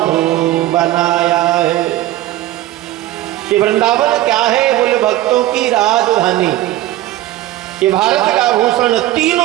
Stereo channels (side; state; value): left; quieter; 15.2 dB